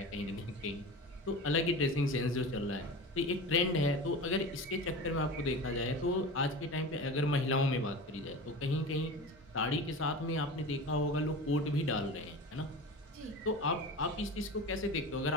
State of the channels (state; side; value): normal; both; correlation 0.31